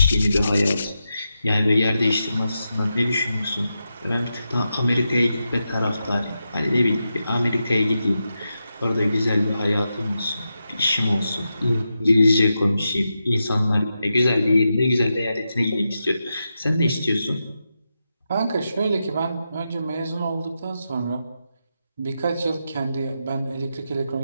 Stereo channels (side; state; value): both; inverted; correlation -0.88